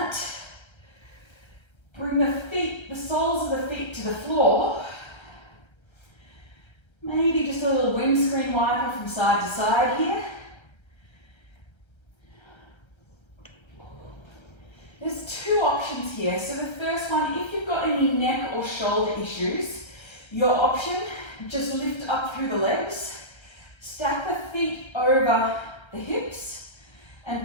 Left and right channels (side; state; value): right; late; 1.3 ms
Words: Bring the feet, the soles of the feet to the floor. Maybe just a little windscreen wiper from side to side here. There's 2 options here. So the first one, if you've got any neck or shoulder issues, your option, just lift up through the legs, stack the feet over the hips,